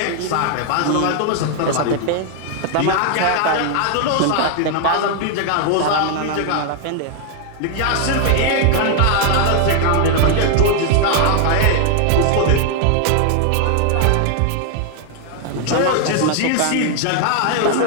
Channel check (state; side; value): different; both; correlation 0.00